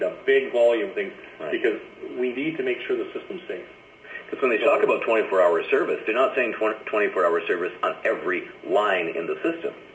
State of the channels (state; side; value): identical; both; correlation 1.00